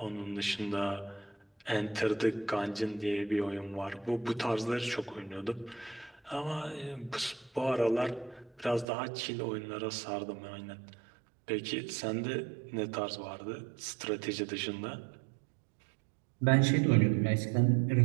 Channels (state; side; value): drops out; left; at 8.8 s